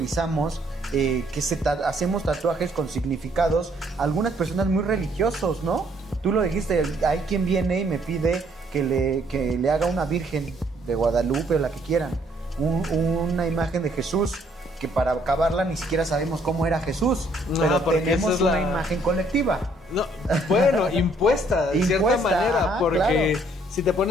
que hacemos tatuajes con significados, algunas personas muy religiosos, ¿no? Tú lo dijiste, hay quien viene y me pide que le haga una virgen de Guadalupe o la que quieran, una imagen de Jesús, que para acabarla ni siquiera sabemos cómo era Jesús, pero tenemos una imagen colectiva. No, bueno, impuesta de cierta manera, porque claro, si te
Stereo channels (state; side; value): normal; both; correlation 0.66